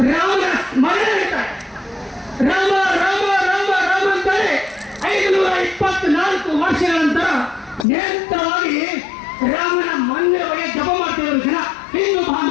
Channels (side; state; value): right; drops out; at 7.9 s